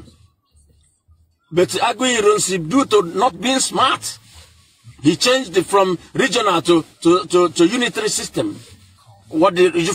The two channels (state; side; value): identical; both; correlation 1.00